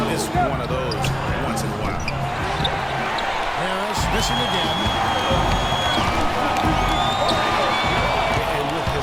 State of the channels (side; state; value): both; identical; correlation 1.00